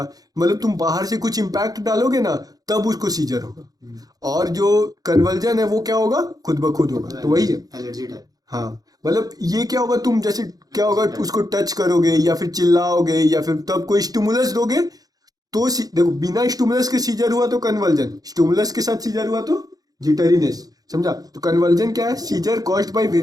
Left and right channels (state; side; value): late; left; 0.18 ms